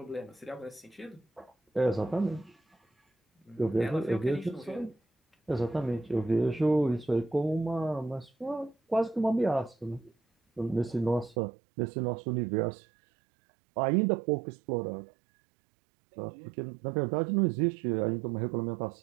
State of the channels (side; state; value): left; drops out; at 11.4 s